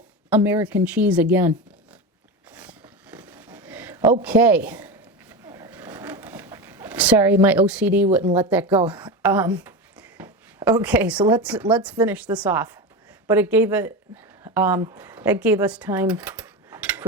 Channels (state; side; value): normal; both; correlation 0.21